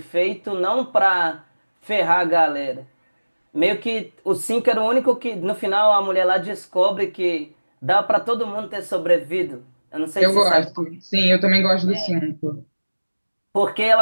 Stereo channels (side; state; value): both; inverted; correlation -1.00